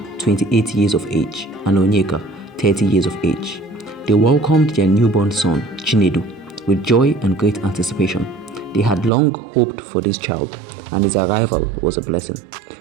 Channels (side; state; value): left; drops out; at 9.1 s